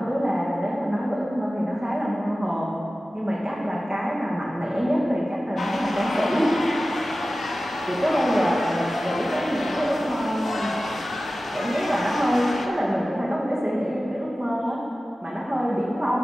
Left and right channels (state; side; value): normal; both; correlation 0.95